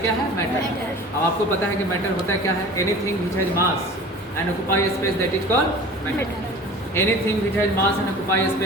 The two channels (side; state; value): both; normal; correlation 0.41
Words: है? मैटर। अब आपको पता है कि मैटर होता है क्या है? Anything which has mass and occupy space that is called matter. Anything which has mass and occupy